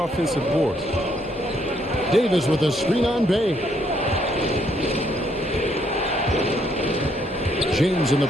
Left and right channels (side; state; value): both; normal; correlation 0.71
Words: board. Davis with a screen on Bay. James in the